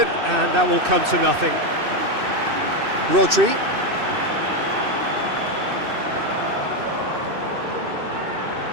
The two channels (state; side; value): late; left; 2.6 ms